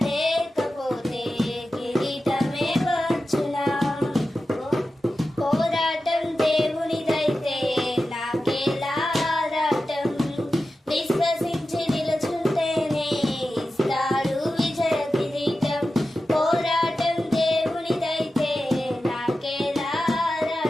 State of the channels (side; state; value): both; normal; correlation 0.93